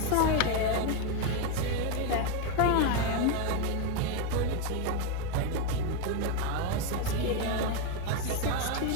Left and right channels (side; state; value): both; different; correlation 0.02